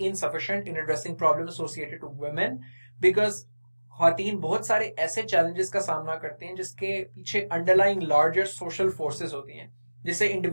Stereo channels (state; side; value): inverted; both; correlation -1.00